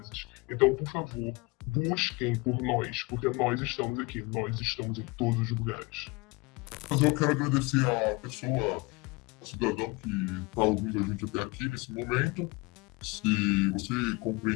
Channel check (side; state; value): right; quieter; 25.7 dB